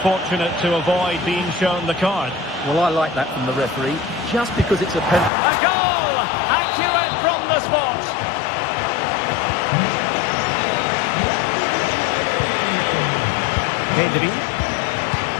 to avoid being shown the card. Well, I like that from the referee, just because it's a penalty. A goal! Accurate from the spot. Pedri.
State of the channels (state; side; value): drops out; right; at 5.3 s